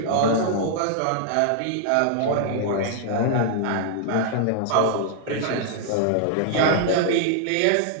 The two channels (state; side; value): different; both; correlation -0.01